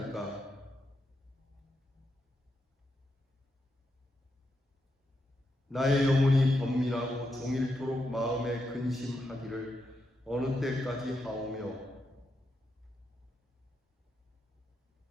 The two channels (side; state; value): both; normal; correlation 0.84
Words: 나의 영혼이 번민하고 종일토록 마음에 근심하기를 어느 때까지 하오며